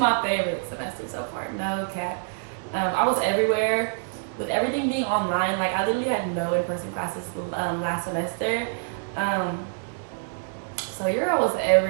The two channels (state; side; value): silent; left; digital silence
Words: favorite semester so far, no cap. I was everywhere. With everything being online, like I literally had no in-person classes last semester. So your girl was